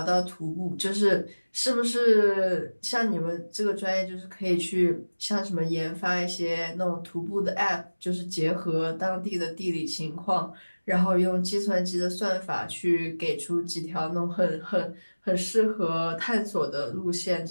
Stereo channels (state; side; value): inverted; both; correlation -1.00